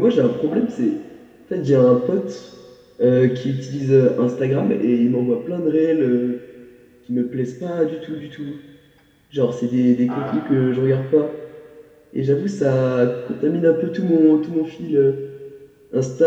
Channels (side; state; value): both; identical; correlation 1.00